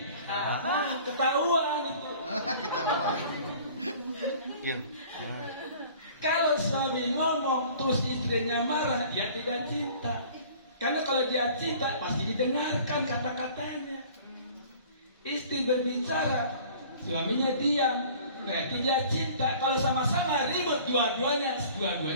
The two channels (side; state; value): both; inverted; correlation -0.48